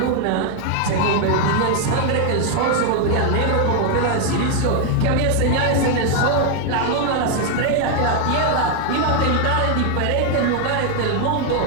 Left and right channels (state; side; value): different; both; correlation 0.00